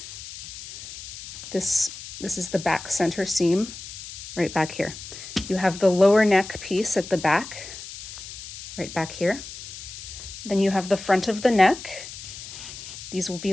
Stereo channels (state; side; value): noise; left; hiss, 12 dB below the sound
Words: This is the back center seam right back here. You have the lower neck piece at the back, right back here. Then you have the front of the neck. These will